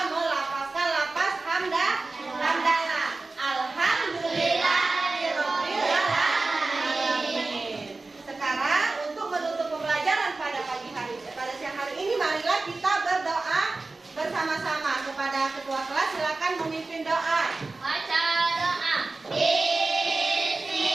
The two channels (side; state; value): left; quieter; 3.5 dB